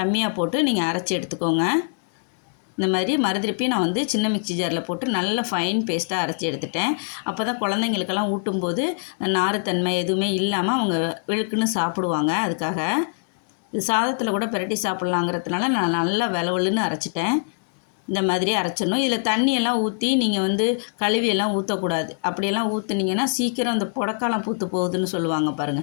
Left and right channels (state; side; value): silent; right; 63 dB below the other